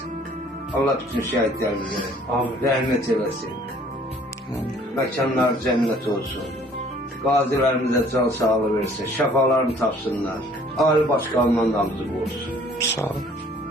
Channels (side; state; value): both; normal; correlation 0.56